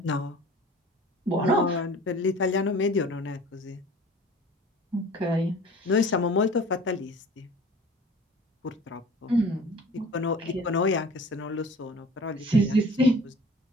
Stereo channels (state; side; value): normal; both; correlation 0.45